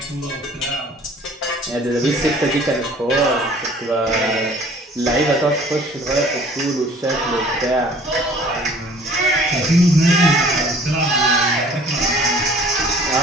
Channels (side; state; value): both; normal; correlation 0.52